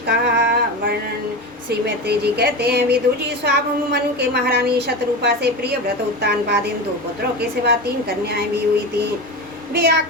का वर्णन। श्री मैत्री जी कहते हैं, विदुर जी, स्वाभंभु मनु के महारानी शतरूपा से प्रिय व्रत उत्तानपादिन 2 पुत्रों के सिवा 3 कन्याएं भी हुई थी। वे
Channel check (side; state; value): both; normal; correlation 0.24